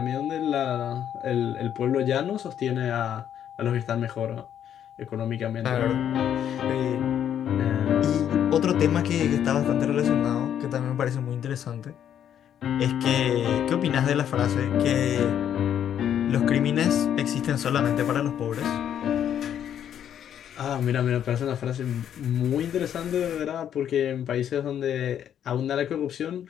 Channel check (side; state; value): right; quieter; 9.7 dB